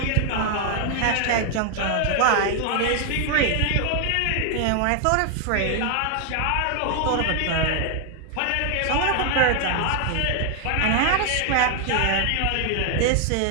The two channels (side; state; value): both; different; correlation 0.00